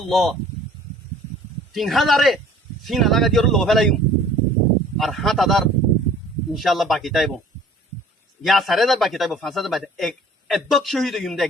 3,000 সিনা লাগা দিও লো ফেলাইম আর 7,000 ইনশাআল্লাহ বাকি তাইব ইয়া 4,000 বাকি তাইব 5,000 বাকি একদক শহীদ হইম দে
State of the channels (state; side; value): normal; both; correlation 0.50